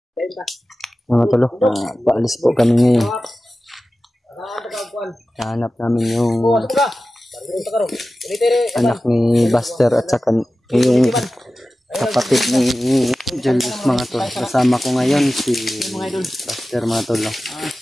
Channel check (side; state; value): both; normal; correlation 0.95